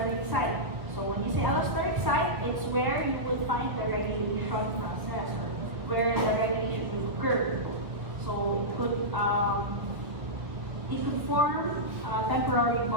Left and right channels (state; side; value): late; left; 1.6 ms